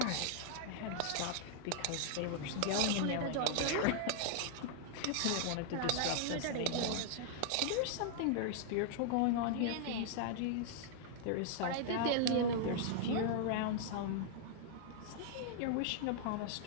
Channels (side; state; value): both; different; correlation -0.01